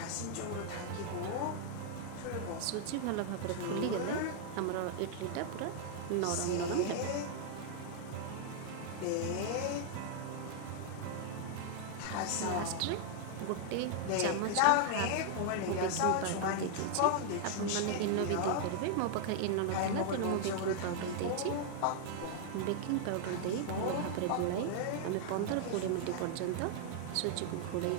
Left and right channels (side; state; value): both; different; correlation 0.00